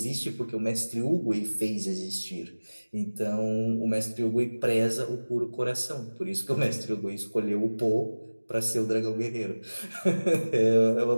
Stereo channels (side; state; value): both; inverted; correlation -1.00